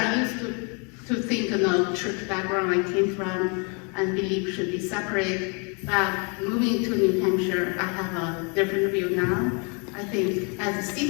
used to think in the church background I came from and believe should be separate. But moving to New Hampshire, I have a different view now. I think as a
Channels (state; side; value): quieter; right; 35.0 dB